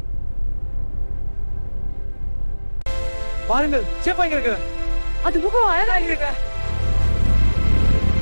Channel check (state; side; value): inverted; both; correlation -1.00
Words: பாருங்கள், சேப்பா இங்க இருக்கு. அது முகம் அழகா இருக்கு.